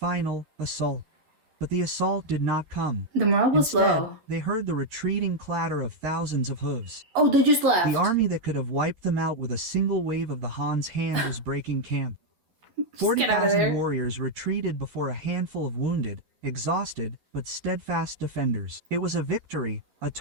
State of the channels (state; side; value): late; left; 11 ms